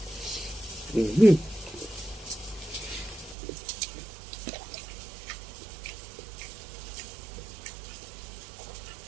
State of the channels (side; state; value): left; drops out; at 3.4 s